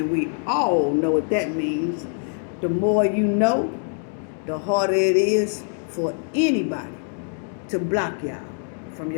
we all know what that means. The more you know, the harder it is for anybody to block y'all from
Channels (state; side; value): silent; right; 59 dB below the other